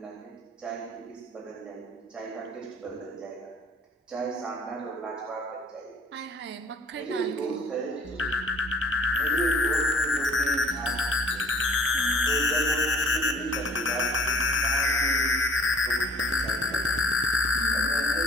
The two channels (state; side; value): normal; both; correlation 0.54